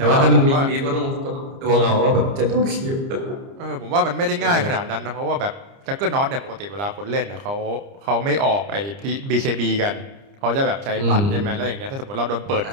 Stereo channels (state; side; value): late; left; 30 ms